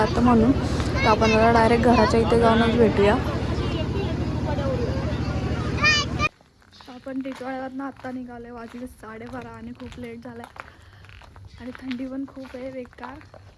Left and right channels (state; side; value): identical; both; correlation 1.00